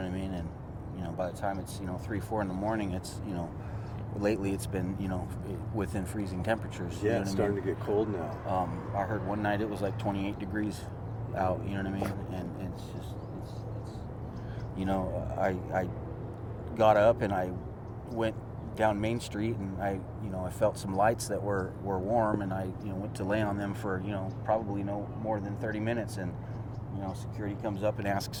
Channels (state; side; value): identical; both; correlation 1.00